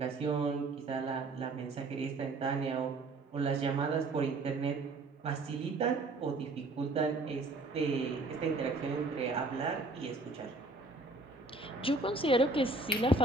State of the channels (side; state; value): left; quieter; 3.2 dB